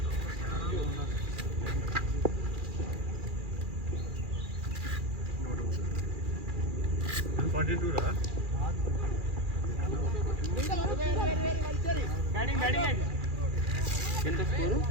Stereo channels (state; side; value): late; left; 2.4 ms